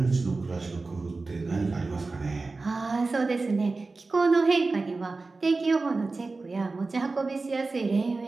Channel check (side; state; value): left; quieter; 3.7 dB